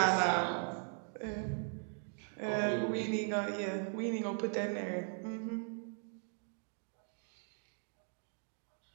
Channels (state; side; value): silent; left; 52 dB below the other